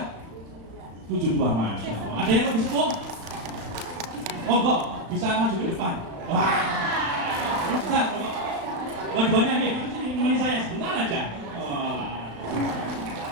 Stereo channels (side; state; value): left; late; 35 ms